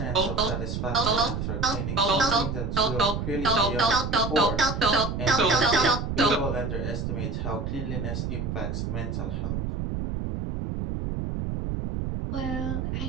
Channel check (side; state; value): right; noise; rumble, 3 dB below the sound